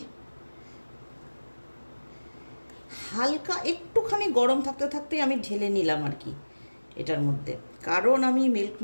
হালকা একটুখানি গরম থাকতে থাকতেই আমি ঢেলে নিলাম আর কি এটার মধ্যে, কারণ আমি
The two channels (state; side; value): inverted; both; correlation -1.00